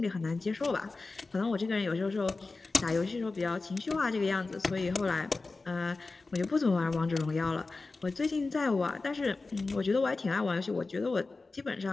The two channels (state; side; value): quieter; right; 3.7 dB